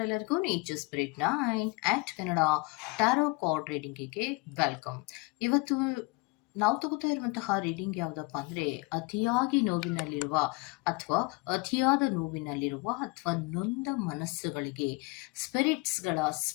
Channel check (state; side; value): quieter; right; 26.5 dB